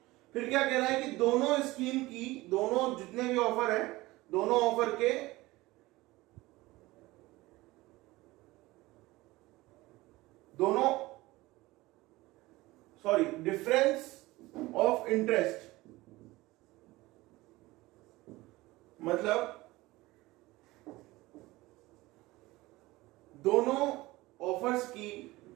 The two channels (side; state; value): left; quieter; 19.7 dB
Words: फिर क्या कह रहा है कि दोनों स्कीम की, दोनों जितने भी ऑफर है, दोनों ऑफर के डिफरेंस ऑफ इंटरेस्ट, मतलब दोनों ऑफर्स की